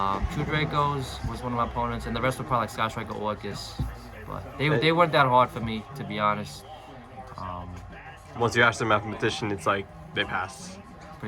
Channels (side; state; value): both; identical; correlation 1.00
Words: Two Dracos was one of my opponents, and the rest were probably like Sky Striker Orcust. But they weren't that hard for me, to be honest. Once you ask the mathematician, it's like they pass.